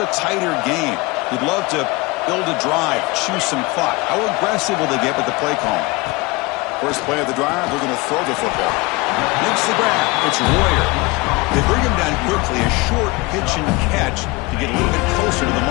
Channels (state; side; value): quieter; right; 24.1 dB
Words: tighter game. We'd love to build a drive, choose some clock. How aggressive will they get with the play call? First play of the drive, we're going to throw the football. Makes the grab. It's Royer. They bring him down quickly, a short pitch and catch to get a little bit closer to the